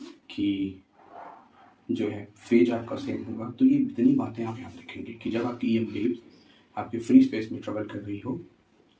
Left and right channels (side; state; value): both; identical; correlation 1.00